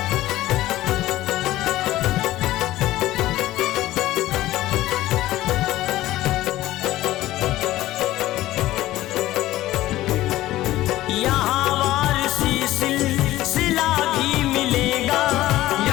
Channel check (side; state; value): right; quieter; 15.7 dB